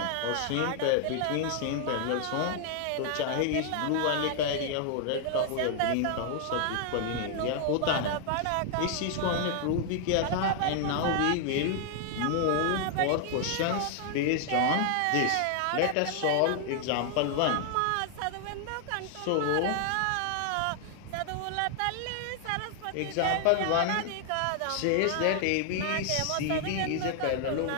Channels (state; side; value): different; both; correlation 0.00